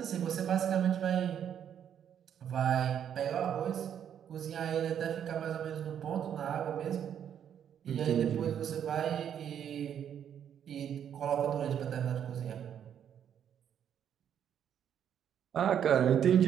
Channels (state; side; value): quieter; left; 9.1 dB